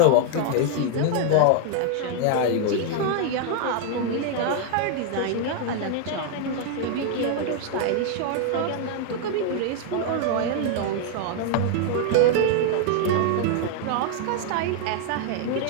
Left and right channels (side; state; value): both; different; correlation 0.00